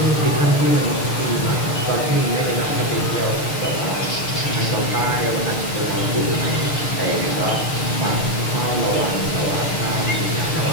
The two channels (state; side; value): late; right; 6.6 ms